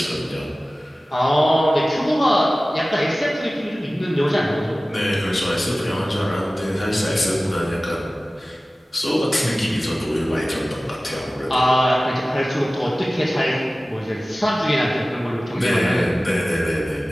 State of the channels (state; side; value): normal; both; correlation 0.97